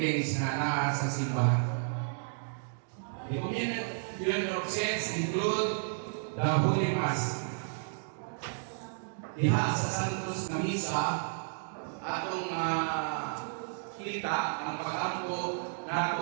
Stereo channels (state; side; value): silent; left; digital silence